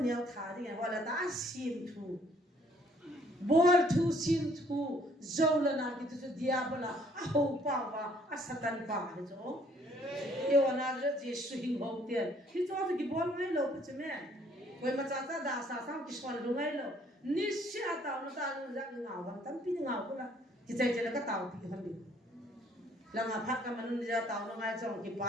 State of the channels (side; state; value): both; normal; correlation 0.62